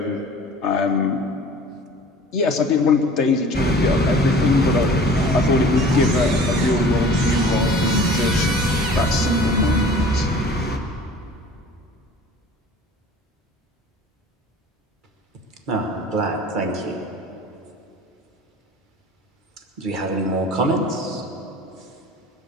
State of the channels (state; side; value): normal; both; correlation 0.45